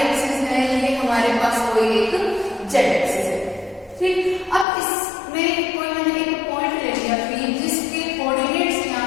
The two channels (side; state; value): right; drops out; at 4.7 s